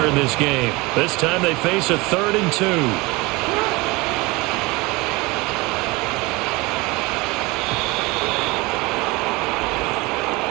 in this game. This time they face a 3rd and 2.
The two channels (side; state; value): left; quieter; 23.7 dB